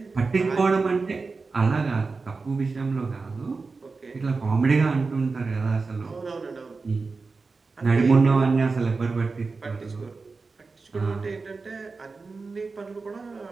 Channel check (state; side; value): quieter; left; 4.2 dB